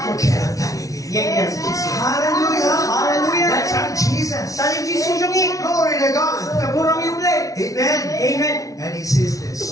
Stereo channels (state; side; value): late; right; 0.17 ms